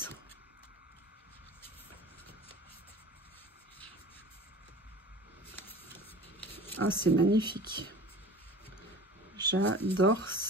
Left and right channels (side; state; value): both; normal; correlation 0.40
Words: Ah, c'est magnifique. J'adore